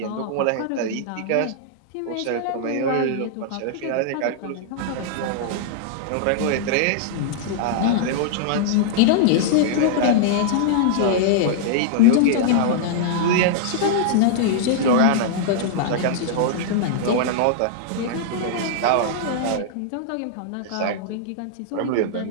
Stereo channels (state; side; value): different; both; correlation -0.01